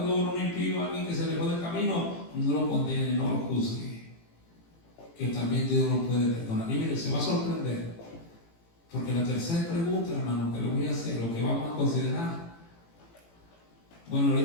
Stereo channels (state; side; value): late; right; 18 ms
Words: un impío, alguien que se alejó del camino, no lo condene, no lo juzgue. Que también Dios lo puede perdonar. Y mire, se va a sorprender, porque la tercera pregunta, hermano, que le voy a hacer, lo que vamos a considerar, bueno,